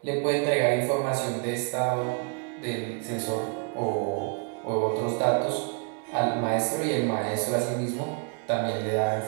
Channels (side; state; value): left; quieter; 36.1 dB